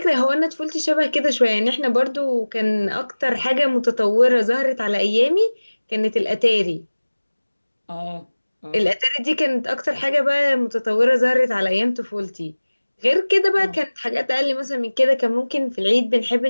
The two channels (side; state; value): both; inverted; correlation -1.00